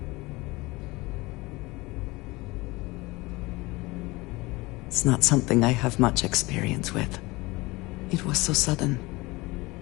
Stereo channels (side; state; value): right; quieter; 22.4 dB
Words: It's not something I have much experience with. It was so sudden.